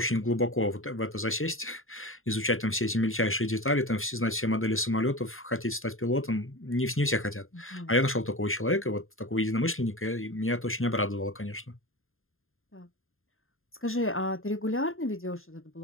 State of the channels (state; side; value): late; right; 0.60 ms